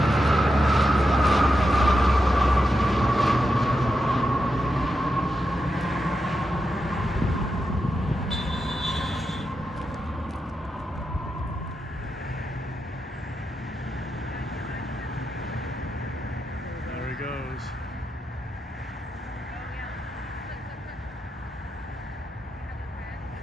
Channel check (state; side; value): normal; both; correlation 0.87